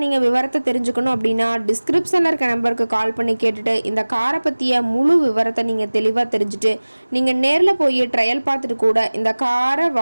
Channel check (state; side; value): inverted; both; correlation -1.00